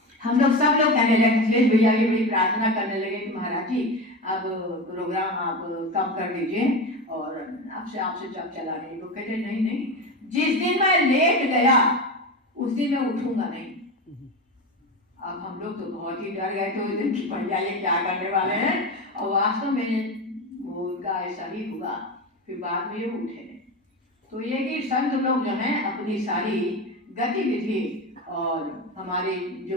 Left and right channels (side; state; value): both; normal; correlation 0.22